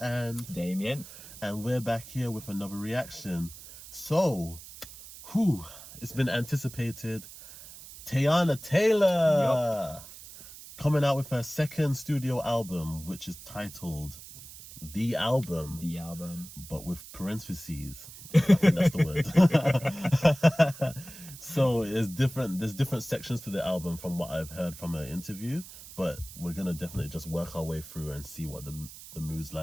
and Damien, and we're back here with another reaction. So, it's been anticipated. Teyana Taylor coming out with her second studio album, which is titled The Album. The Album. But with parentheses. I think that's the word. So there's different sections to the album from what I've heard from her interview, but we're gonna definitely just work our way through and see what the mood's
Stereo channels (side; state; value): right; noise; hiss, 16 dB below the sound